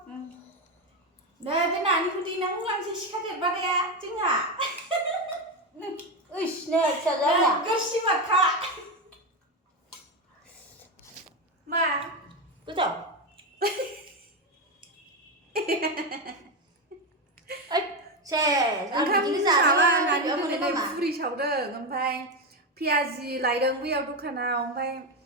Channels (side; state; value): both; normal; correlation 0.12